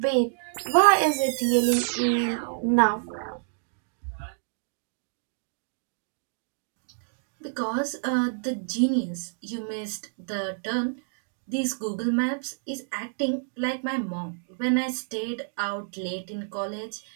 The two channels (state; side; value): silent; left; digital silence